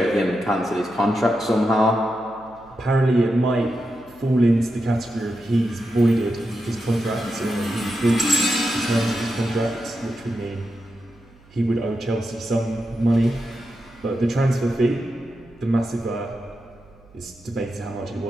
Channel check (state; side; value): noise; right; hum, 27 dB below the sound